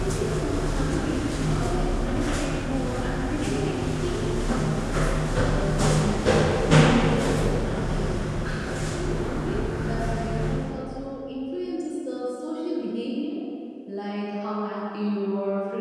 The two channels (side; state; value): both; identical; correlation 1.00